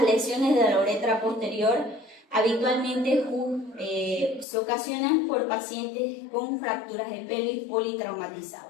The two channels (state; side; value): drops out; right; at 4.5 s